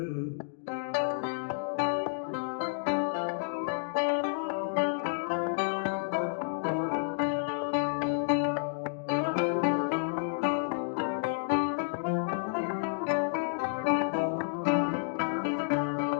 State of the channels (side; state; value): right; silent; digital silence